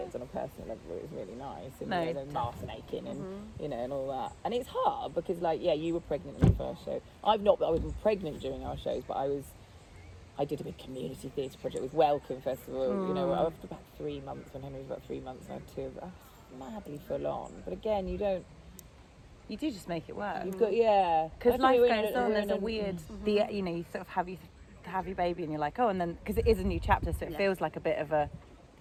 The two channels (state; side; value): identical; both; correlation 1.00